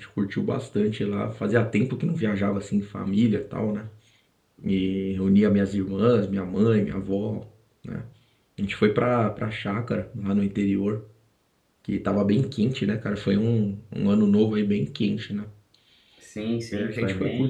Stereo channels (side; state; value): both; identical; correlation 1.00